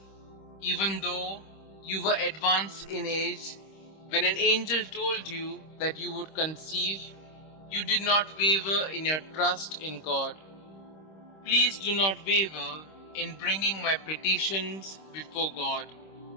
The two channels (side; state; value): right; late; 26 ms